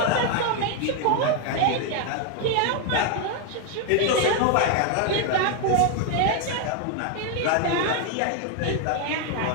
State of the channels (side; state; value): both; different; correlation 0.01